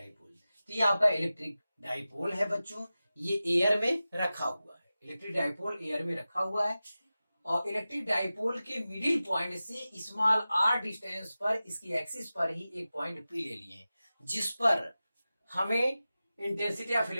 तो ये आपका इलेक्ट्रिक डाइपोल है बच्चों, ये एयर में रखा हुआ है। इलेक्ट्रिक डाइपोल एयर में रखा हुआ है और इलेक्ट्रिक डाइपोल के मिडिल पॉइंट से स्मॉल r डिस्टेंस पर इसकी एक्सिस पर ही एक पॉइंट P ले लिए, जिस पर हमें इंटेंसिटी ऑफ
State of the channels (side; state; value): both; inverted; correlation -0.95